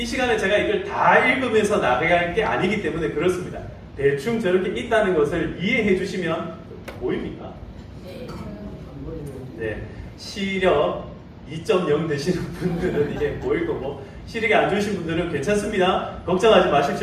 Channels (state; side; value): identical; both; correlation 1.00